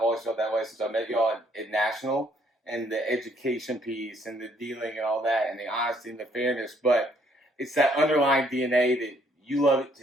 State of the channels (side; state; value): both; normal; correlation 0.66